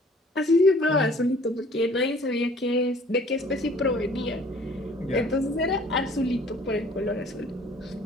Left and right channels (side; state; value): both; normal; correlation 0.54